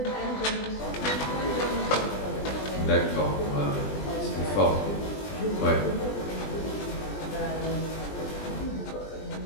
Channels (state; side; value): late; right; 20 ms